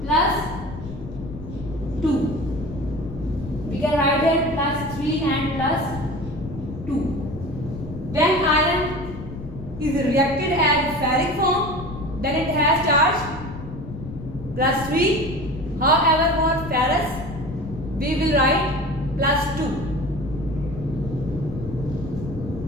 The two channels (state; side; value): noise; left; rumble, 11 dB below the sound